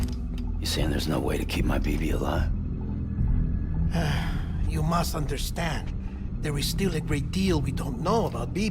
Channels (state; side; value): identical; both; correlation 1.00